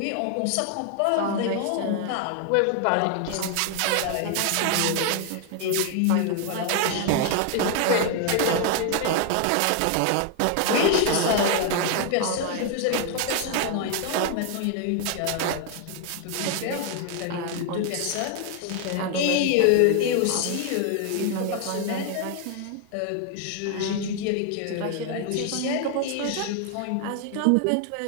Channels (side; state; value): both; different; correlation 0.00